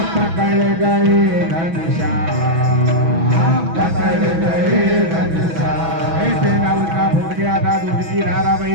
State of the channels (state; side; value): late; left; 6.1 ms